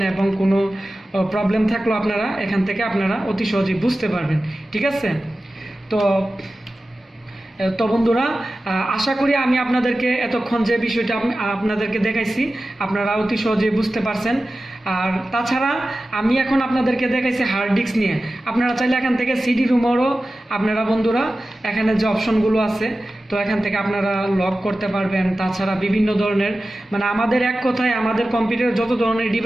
এবং কোনো প্রবলেম থাকলেও আপনারা এখান থেকে আপনারা অতি সহজেই বুঝতে পারবেন, ঠিক আছে। তো বন্ধুরা আশা করি আমি আপনাদেরকে এতক্ষণ যে বিষয়টা আপনাদেরকে দেখাইছি আপনারা অতি সহজেই বুঝতে পারছেন। আর তাছাড়া আমি এখন আপনাদেরকে দেখাইছি হার্ড ডিস্ক নিয়ে, আপনারা চাইলে এখান থেকে সিডি রুমেরও আপনারা বন্ধুরা এখানে যে অপশনগুলো আছে তো এখান থেকে আপনারা লক করতে পারবেন। তাছাড়া বিভিন্ন ধরনের মানে আমাদের এক কথায় আমাদের কম্পিউটারে যত ধরনের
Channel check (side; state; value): both; normal; correlation 0.95